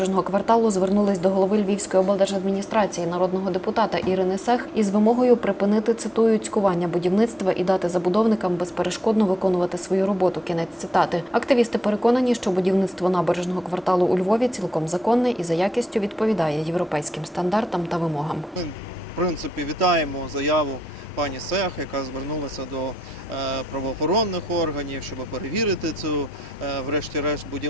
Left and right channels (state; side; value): normal; both; correlation 0.84